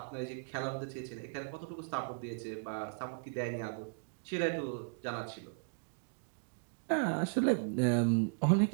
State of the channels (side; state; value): left; silent; digital silence